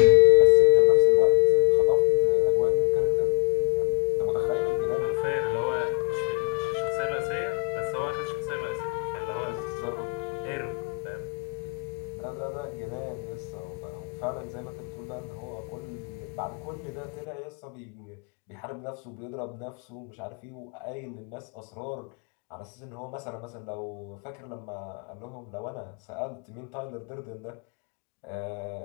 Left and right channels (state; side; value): quieter; right; 37.0 dB